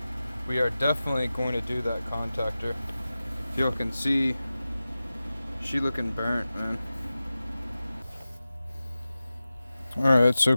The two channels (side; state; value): both; inverted; correlation -0.95